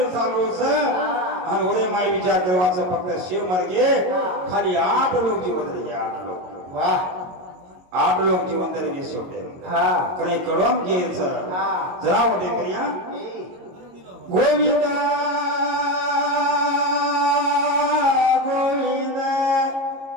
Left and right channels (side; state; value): left; late; 22 ms